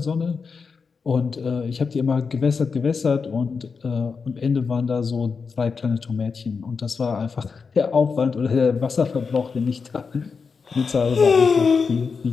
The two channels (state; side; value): quieter; right; 5.2 dB